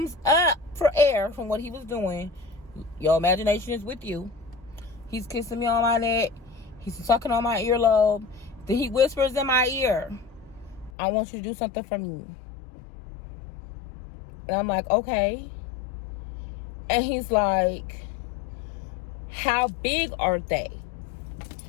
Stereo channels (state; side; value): drops out; right; at 10.9 s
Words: up for air from what he was doing? Your imagination is with you. He's kissing me on my neck. He's sucking on my earlobe. Then he whispers in my ear, I want you to do something for me. And I'm like, okay. And he's like, how big are they?